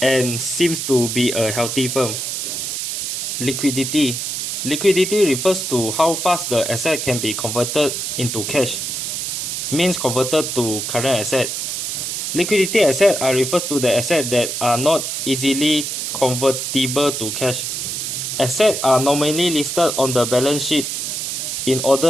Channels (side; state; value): right; noise; hiss, 3 dB below the sound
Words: and seems to be a healthy firm. Liquidity. Liquidity refers to how fast the asset can be converted into cash, means converted to current asset. Liquidity assets are refers to the assets that are not easily convertible to cash. Assets are normally listed on the balance sheet in